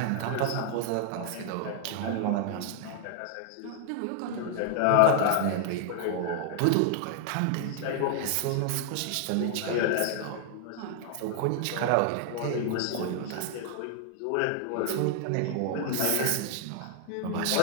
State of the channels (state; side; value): different; both; correlation 0.00